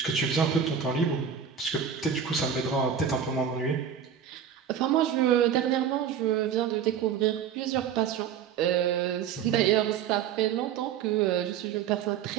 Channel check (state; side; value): quieter; left; 8.1 dB